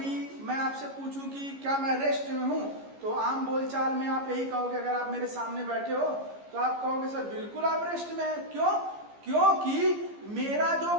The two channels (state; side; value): late; left; 15 ms